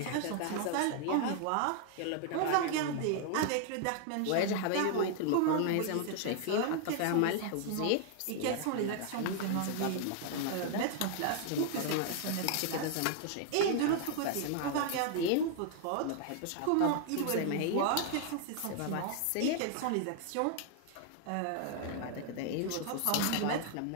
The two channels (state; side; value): different; both; correlation 0.00